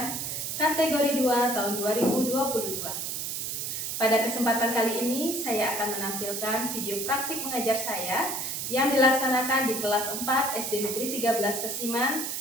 kategori 2 tahun 2022. Pada kesempatan kali ini, saya akan menampilkan video praktik mengajar saya yang dilaksanakan di kelas 4 SD Negeri 13 Kesiman,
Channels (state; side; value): noise; right; hiss, 3 dB below the sound